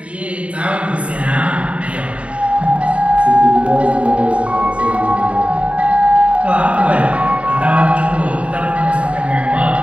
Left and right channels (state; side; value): late; left; 0.063 ms